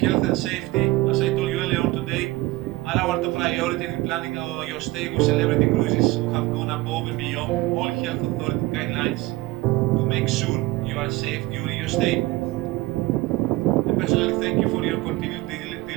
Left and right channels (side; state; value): left; quieter; 19.8 dB